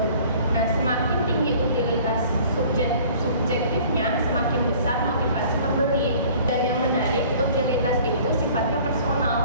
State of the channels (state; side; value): inverted; both; correlation -0.50